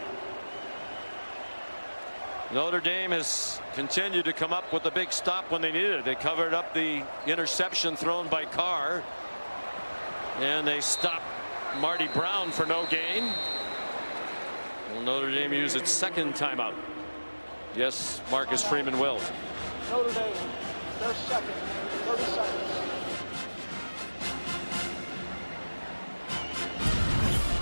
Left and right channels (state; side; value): inverted; both; correlation -1.00